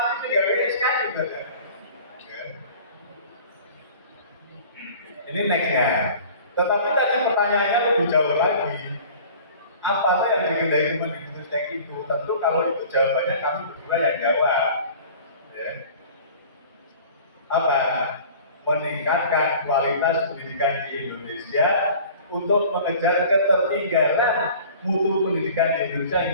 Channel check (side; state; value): both; inverted; correlation -0.45